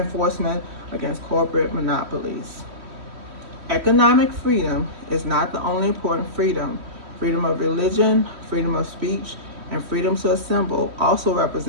against corporate monopolies. Economic freedom is not the only important freedom. Freedom of religion, freedom of speech, and freedom to assemble also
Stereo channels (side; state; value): left; late; 3.1 ms